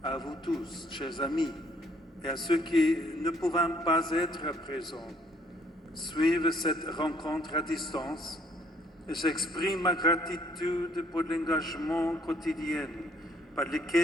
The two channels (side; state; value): both; normal; correlation 0.64